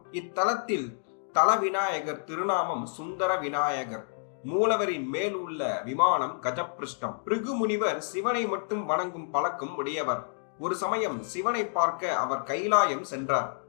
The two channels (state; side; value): silent; right; digital silence